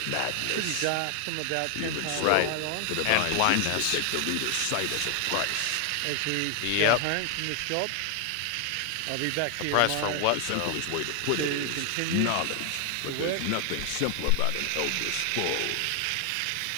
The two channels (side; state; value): both; different; correlation 0.00